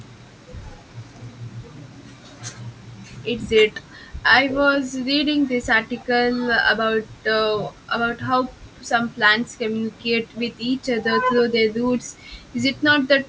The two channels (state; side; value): identical; both; correlation 1.00